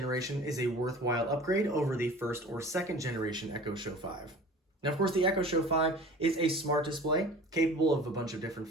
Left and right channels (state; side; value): normal; both; correlation 0.42